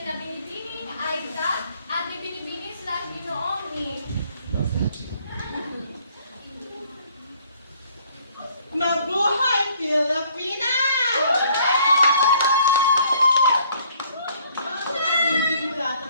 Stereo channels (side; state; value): both; inverted; correlation -0.61